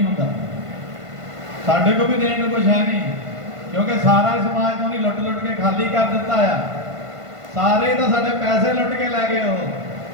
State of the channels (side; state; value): left; late; 1.5 ms